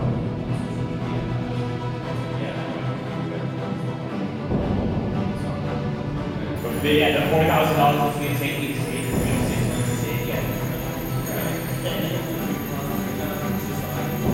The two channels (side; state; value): both; identical; correlation 1.00